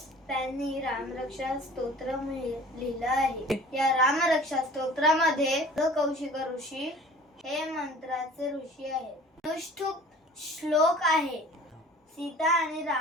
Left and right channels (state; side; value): normal; both; correlation 0.46